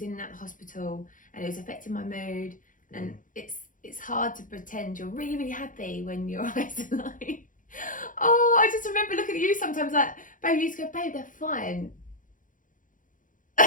in and out of the hospital and it was affecting my mood, and it's hard to pretend you're really, really happy when your eyes are like, oh, I just remember looking at you sometimes like, babe, you used to go, babe, they're fine.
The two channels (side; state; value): right; late; 0.38 ms